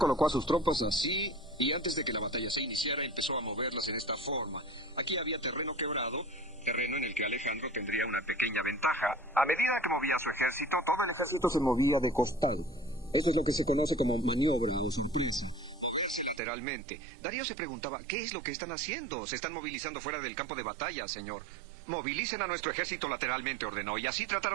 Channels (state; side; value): drops out; left; at 16.4 s